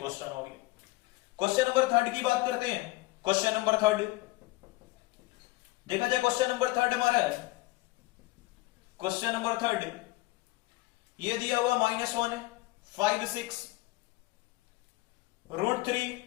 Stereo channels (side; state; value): right; quieter; 20.9 dB